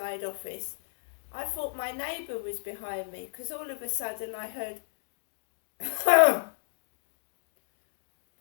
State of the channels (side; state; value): right; silent; digital silence